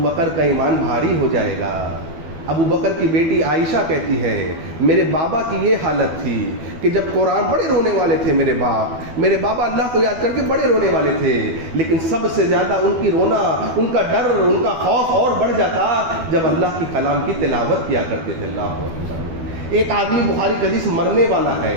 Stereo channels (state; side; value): late; left; 12 ms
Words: بکر کا ایمان بھاری ہو جائے گا۔ ابو بکر کی بیٹی عائشہ کہتی ہے میرے بابا کی یہ حالت تھی کہ جب قرآن، بڑے رونے والے تھے میرے بابا اللہ کو یاد کر کے بڑے رونے والے تھے، لیکن سب سے زیادہ ان کی رونا، ان کا ڈر، ان کا خوف اور بڑھ جاتا جب اللہ کی کلام کی تلاوت کیا کرتے تھے۔ اللہ اکبر۔ ایک آدمی بخاری کا حدیث مرنے والا